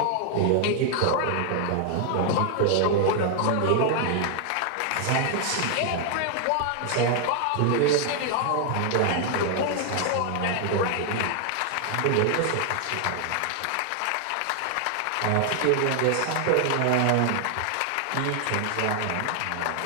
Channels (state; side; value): different; both; correlation 0.00